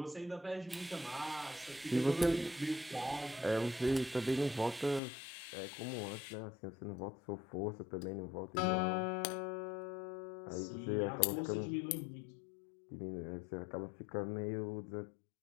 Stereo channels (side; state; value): right; drops out; at 5.0 s